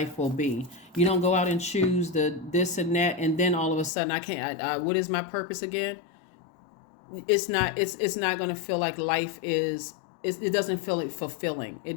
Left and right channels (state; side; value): drops out; right; at 3.9 s